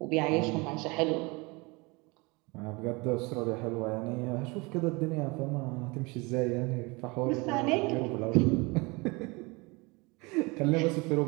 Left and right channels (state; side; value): quieter; left; 26.4 dB